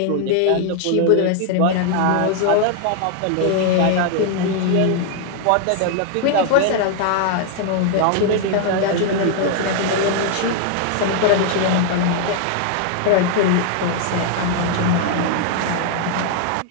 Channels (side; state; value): both; different; correlation 0.00